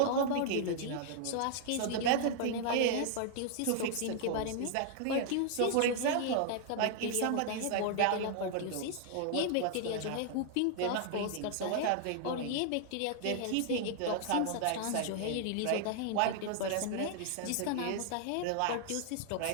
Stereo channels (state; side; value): different; both; correlation -0.01